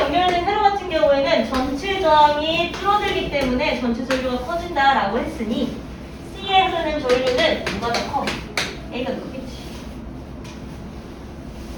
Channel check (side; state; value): both; identical; correlation 1.00